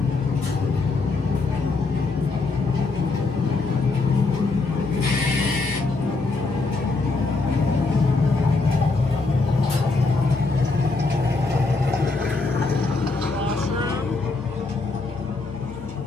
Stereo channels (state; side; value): quieter; right; 3.7 dB